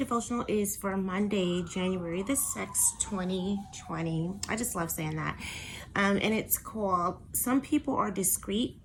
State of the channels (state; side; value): identical; both; correlation 1.00